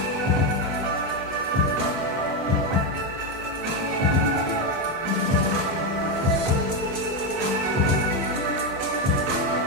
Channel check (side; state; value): both; normal; correlation 0.08